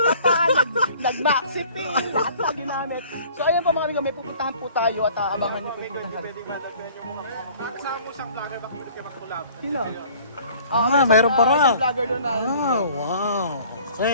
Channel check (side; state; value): both; inverted; correlation -0.52